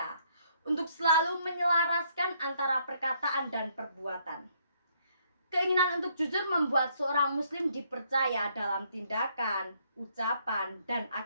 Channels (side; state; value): both; inverted; correlation -0.69